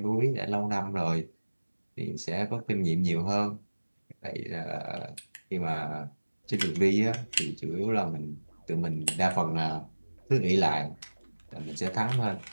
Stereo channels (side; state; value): both; inverted; correlation -1.00